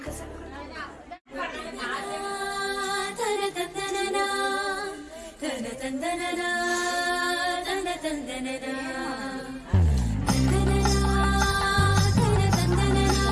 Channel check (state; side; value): identical; both; correlation 1.00